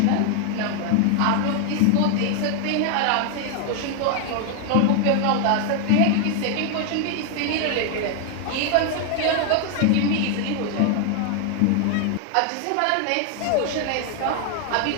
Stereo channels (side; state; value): both; different; correlation 0.00